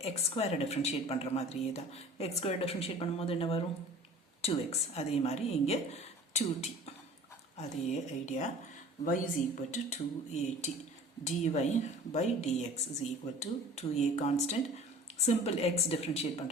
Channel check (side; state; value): both; normal; correlation 0.45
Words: எக்ஸ் ஸ்கொயரை டிஃப்ரென்ஷியேட் பண்ணுற மாதிரியே தான். எக்ஸ் ஸ்கொயர் டிஃப்ரென்ஷியேட் பண்ணும்போது என்ன வரும்? 2x. அதே மாதிரி இங்கே 2t. அதே idea. y is equal to 2at. dy by dx is equal to 2a constant. Simple x differentiate